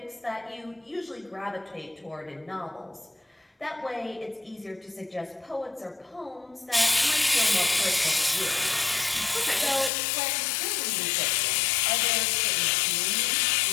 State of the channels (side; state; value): right; drops out; at 9.9 s